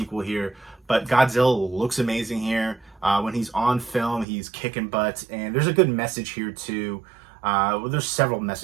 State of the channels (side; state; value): left; drops out; at 4.2 s